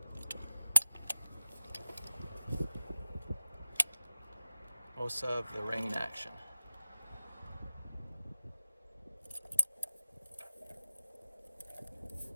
of the rain action.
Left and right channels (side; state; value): both; inverted; correlation -0.94